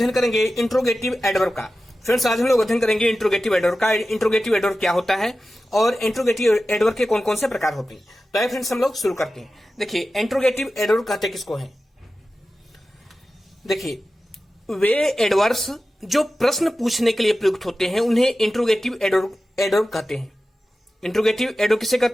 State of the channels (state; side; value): normal; both; correlation 0.94